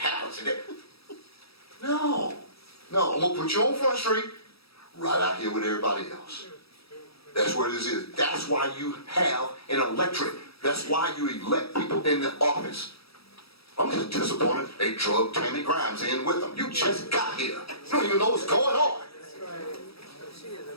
in it. No, I'm gonna put you on Front Street, right out here with everybody else. That's where this is. That's why you have an electorate. That's why you elect people in the office. I'm just disappointed they drug Tammy Grimes in with them. You just got here. You don't even know what's going on. She is a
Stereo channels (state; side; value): late; right; 0.77 ms